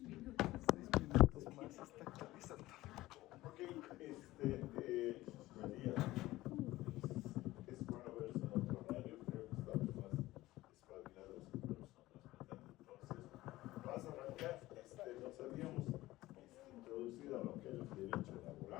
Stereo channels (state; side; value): quieter; right; 17.4 dB